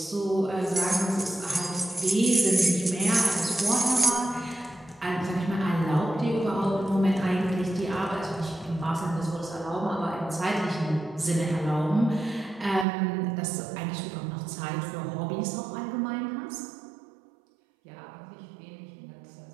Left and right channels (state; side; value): drops out; left; at 12.9 s